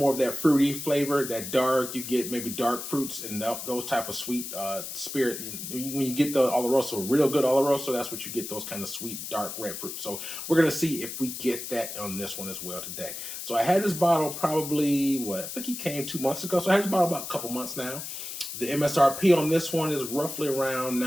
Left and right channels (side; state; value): left; noise; hiss, 8 dB below the sound